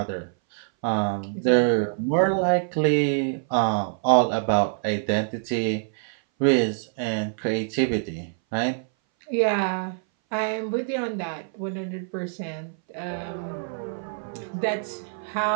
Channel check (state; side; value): silent; left; 59 dB below the other